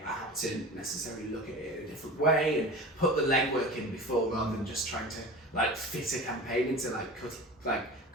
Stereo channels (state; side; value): normal; both; correlation 0.34